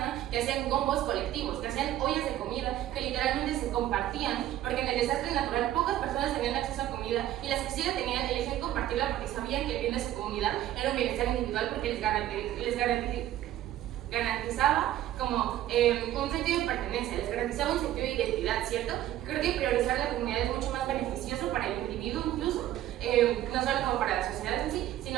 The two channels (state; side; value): quieter; left; 13.2 dB